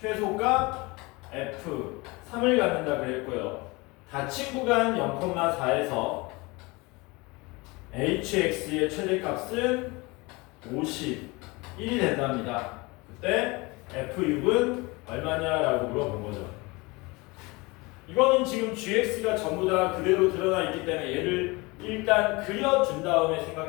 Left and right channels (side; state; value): right; quieter; 24.9 dB